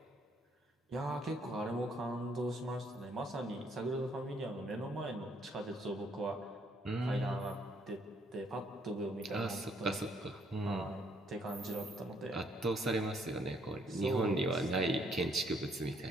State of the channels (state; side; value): normal; both; correlation 0.68